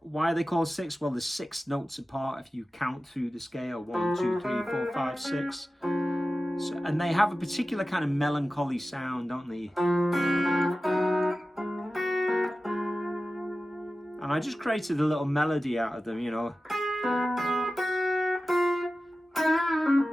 Why are they called six? Well, there's 6 notes apart if you count through the scale. 1, 2, 3, 4, 5, 6. So, and they have a particular kind of melancholy sound, don't they? And I just created a little melody out of them, you know.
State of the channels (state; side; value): normal; both; correlation 0.95